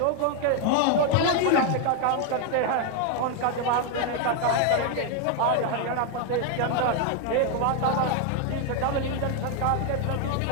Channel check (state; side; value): different; both; correlation 0.01